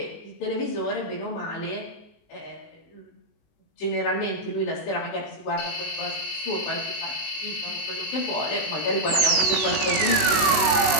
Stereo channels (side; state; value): right; late; 19 ms